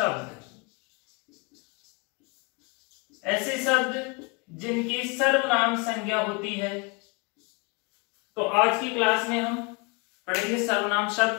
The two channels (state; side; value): quieter; right; 30.2 dB